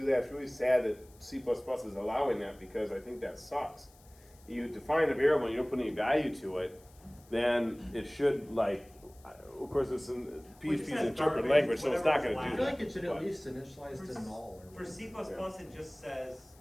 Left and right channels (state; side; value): noise; left; hiss, 27 dB below the sound